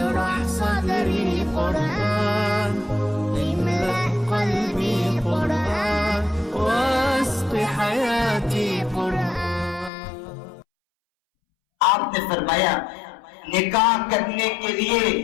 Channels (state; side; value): drops out; right; at 9.9 s